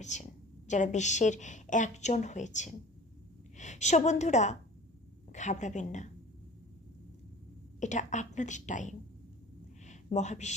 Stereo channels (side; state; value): both; normal; correlation 0.42